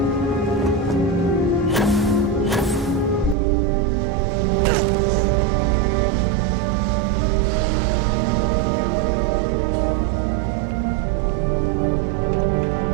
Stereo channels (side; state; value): left; drops out; at 3.4 s